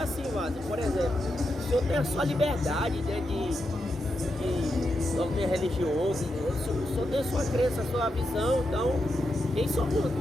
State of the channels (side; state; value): both; normal; correlation 0.85